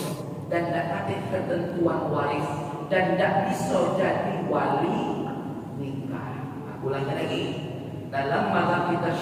dan tidak ada ketentuan waris dan tidak bisa jadi wali nikah. Aku ulangi lagi. Dalam mazhab kita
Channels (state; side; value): identical; both; correlation 1.00